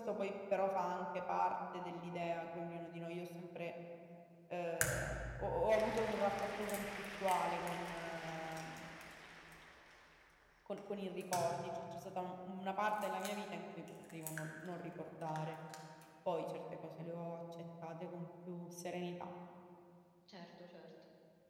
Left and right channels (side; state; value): both; identical; correlation 1.00